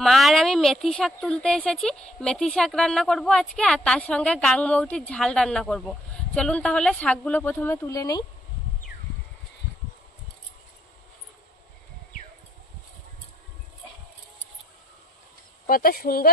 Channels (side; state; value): both; normal; correlation 0.68